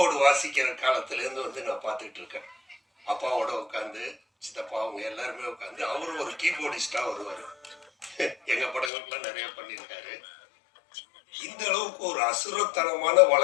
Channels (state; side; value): drops out; right; at 8.9 s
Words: வாசிக்கிற காலத்துல இருந்து வந்து நான் பார்த்துட்டு இருக்கேன். அப்பாவோட உட்காந்து, சித்தப்பா அவங்க எல்லாருமே உட்காந்து, அவரும் ஒரு கீபோர்டிஸ்டா வருவாரு. எங்க படங்களுக்குலாம் நிறைய பண்ணியிருக்காரு. இந்த அளவுக்கு ஒரு அசுரத்தனமான